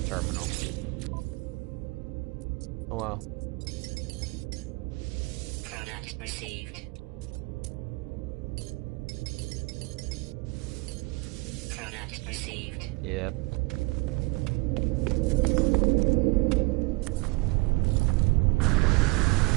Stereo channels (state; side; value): quieter; left; 25.3 dB